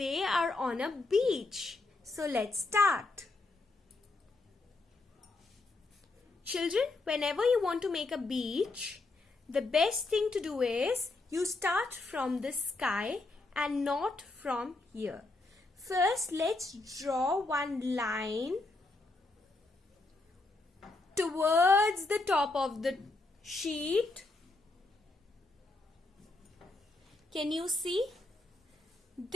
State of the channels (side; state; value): right; quieter; 3.2 dB